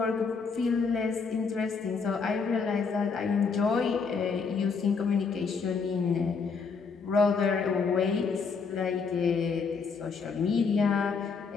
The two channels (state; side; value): quieter; right; 5.2 dB